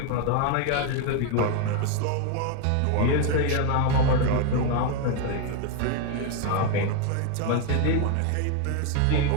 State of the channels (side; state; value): both; different; correlation 0.01